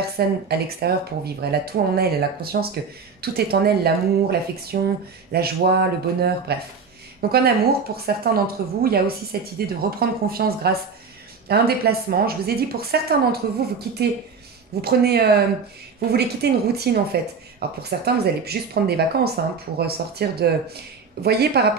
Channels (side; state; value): left; quieter; 5.3 dB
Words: à l'extérieur pour vivre. Elle a tout en elle a conscience que tout est en elle, l'amour, l'affection, la joie, le bonheur, bref. Donc en amour, pour certains d'entre vous, il y a aussi cette idée de reprendre confiance grâce à un déplacement. Je vous ai dit, pour certains d'entre vous, vous voulez quitter une routine en fait. Alors pour certains, vous allez juste prendre des vacances pour sortir de... Vous voyez, par